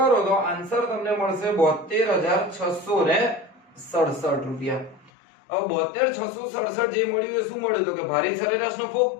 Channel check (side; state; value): right; drops out; at 5.1 s